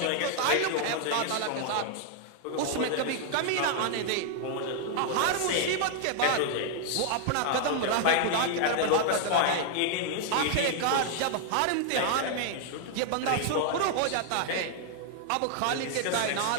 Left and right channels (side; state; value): both; different; correlation 0.00